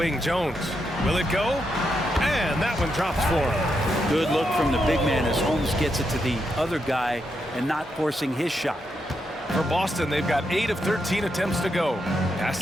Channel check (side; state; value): both; normal; correlation 0.82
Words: Jones. Will it go? And that one drops for him. Good look from the big man as Holmes gets it to the other guy and not forcing his shot. For Boston, they've got 8 of 13 attempts to go. Pass